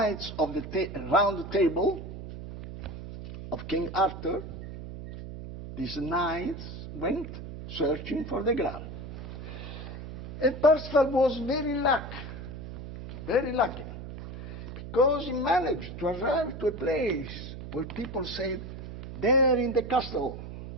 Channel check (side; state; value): right; noise; hum, 10 dB below the sound